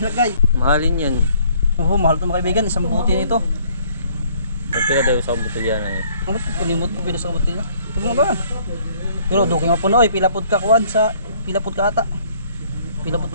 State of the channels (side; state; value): both; inverted; correlation -0.60